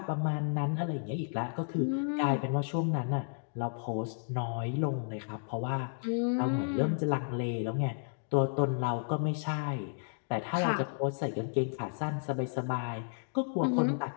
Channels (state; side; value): silent; right; digital silence